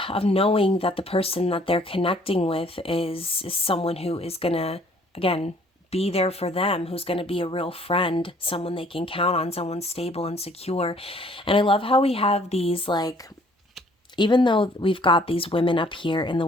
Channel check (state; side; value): normal; both; correlation 0.59